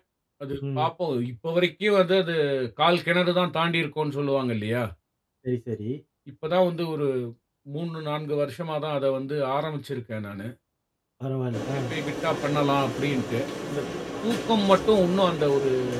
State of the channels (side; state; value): both; identical; correlation 1.00